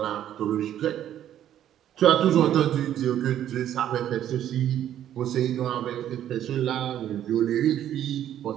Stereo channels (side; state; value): left; quieter; 11.1 dB